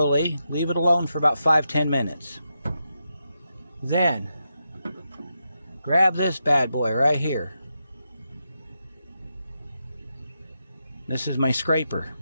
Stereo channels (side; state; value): both; inverted; correlation -0.86